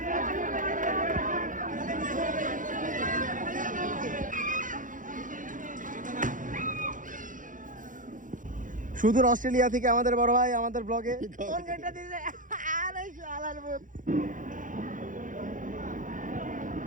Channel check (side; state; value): left; late; 0.38 ms